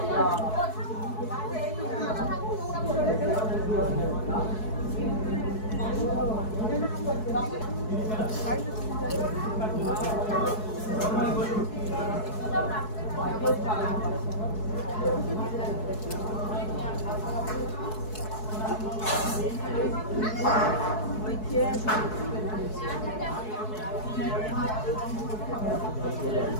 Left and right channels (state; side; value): late; right; 4.7 ms